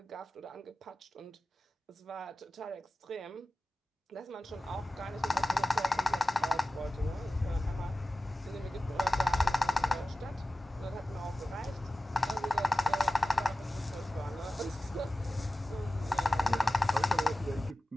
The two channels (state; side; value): normal; both; correlation 0.95